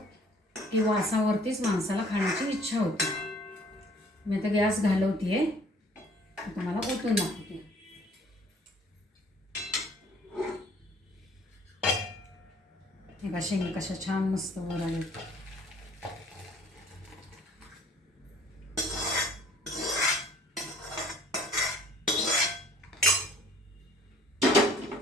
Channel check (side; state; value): both; normal; correlation 0.56